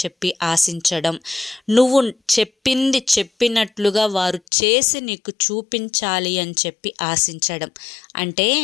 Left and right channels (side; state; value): right; drops out; at 4.4 s